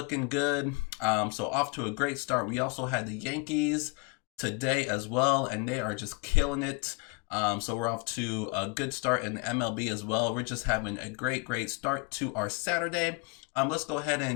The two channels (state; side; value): quieter; right; 29.9 dB